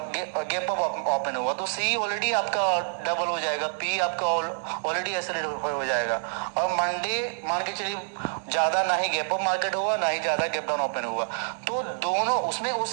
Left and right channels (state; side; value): silent; left; digital silence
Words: गैप अप ओपन होगा, तो C ऑलरेडी आपका डबल हो जाएगा, P आपका ऑलरेडी एक्सेलेरेट हो जाएगा। और मंडे मान के चलिए ज्यादा ना ही गैप अप मार्केट होगा, ना ही ज्यादा गैप डाउन ओपन होगा, तो दोनों उसमें